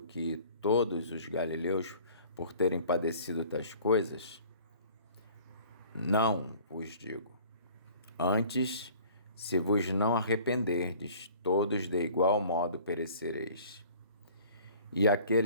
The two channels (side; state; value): both; inverted; correlation -0.50